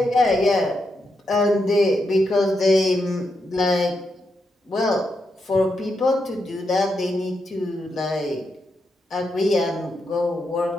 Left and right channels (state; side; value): normal; both; correlation 0.83